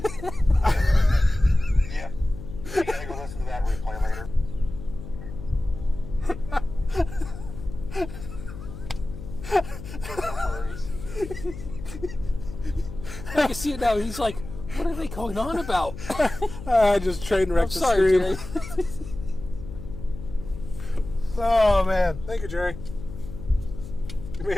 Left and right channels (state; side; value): noise; left; hum, 12 dB below the sound